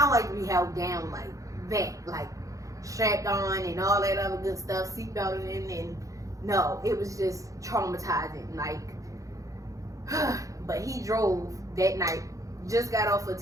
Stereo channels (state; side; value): late; left; 0.16 ms